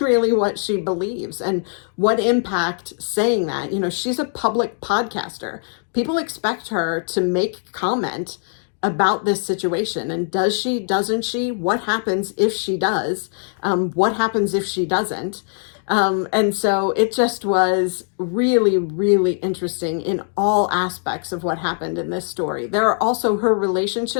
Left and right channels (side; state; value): right; silent; 59 dB below the other